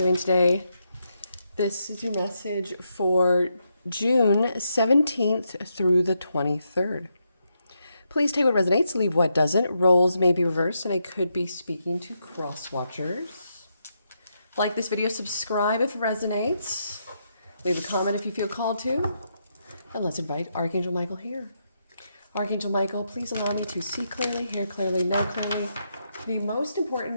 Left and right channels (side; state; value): both; inverted; correlation -0.81